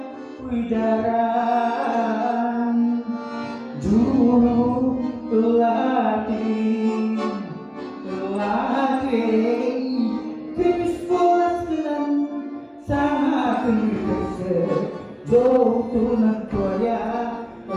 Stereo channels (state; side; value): identical; both; correlation 1.00